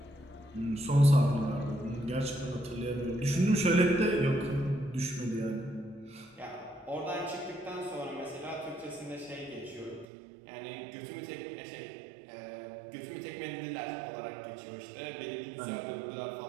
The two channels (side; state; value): left; drops out; at 10.1 s